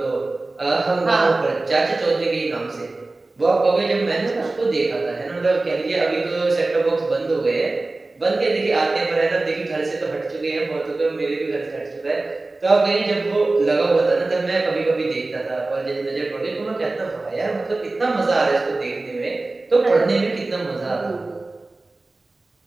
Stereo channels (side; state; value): left; quieter; 3.2 dB